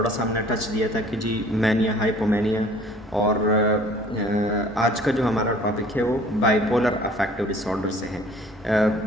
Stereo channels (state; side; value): normal; both; correlation 0.51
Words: سا ہم نے ٹچ دیا تھا کہ جی مینیا، ہائپومینیا، اور آج کا جو ہمارا ٹاپک ہے وہ bipolar affective disorder سے ہے۔